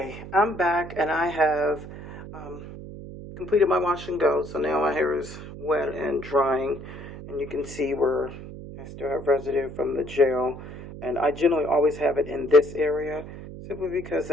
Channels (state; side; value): noise; right; hum, 12 dB below the sound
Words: I'm back and I have um, completed my wash and go. So now my hair is wet and drying, and you can see where I still have residue from the gel. And I generally always have it in this area simply because